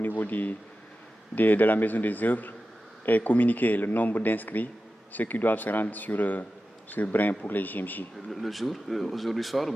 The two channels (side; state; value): both; normal; correlation 0.93